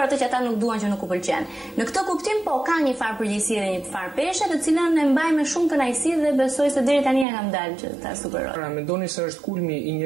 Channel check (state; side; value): drops out; left; at 7.2 s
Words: atë që ata nuk duan, që nuk u pëlqen. Në këtë kuptim po ka një farë përgjegjësie dhe një farë peshe, të cilën e mbaj me shumë kënaqësi dhe besoj se deri tani e kam dalë që ta superoj. Pra mendoni se është kulmi i